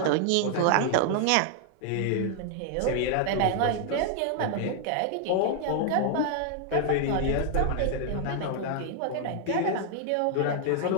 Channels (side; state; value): both; different; correlation 0.00